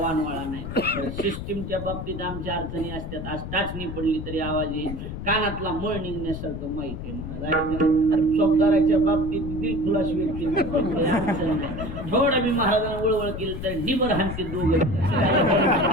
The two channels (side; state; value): left; noise; rumble, 7 dB below the sound